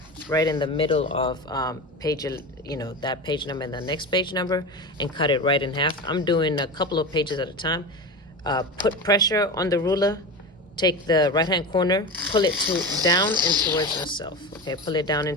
right in the middle of page, that page number and the next page number, and cut it right in half. I'm doing a couple of pages at a time. Put pressure on the ruler. Take the right-hand corner, pull it down and towards yourself. Okay, pull it down and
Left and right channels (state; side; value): normal; both; correlation 0.25